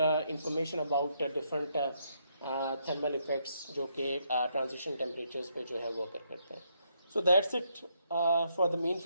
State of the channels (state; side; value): inverted; both; correlation -0.76